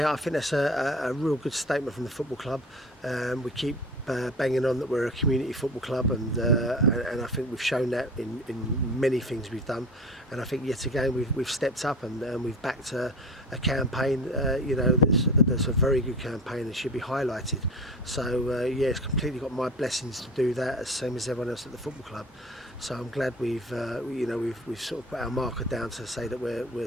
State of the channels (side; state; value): both; normal; correlation 0.35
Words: I think that's a real good statement from the football club. We keep banging on that we're a community football club, and I think we've shown that in many things we've done. And I think yet again we've stepped up and we've backed a campaign. That's a very good campaign and should be highlighted. So yeah, it's completely got my blessings to do that, as same as everyone else at the football club. So I'm glad we've sort of put our marker down to say that